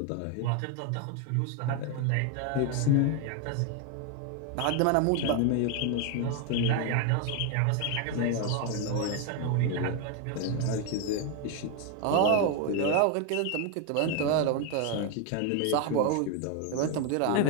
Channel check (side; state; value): both; different; correlation 0.01